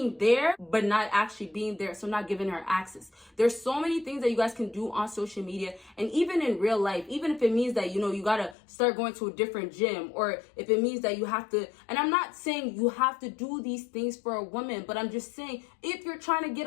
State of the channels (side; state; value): right; drops out; at 8.6 s